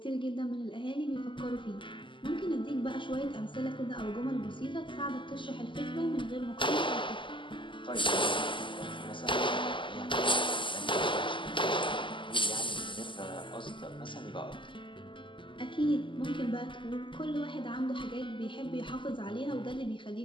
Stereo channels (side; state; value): right; late; 0.24 ms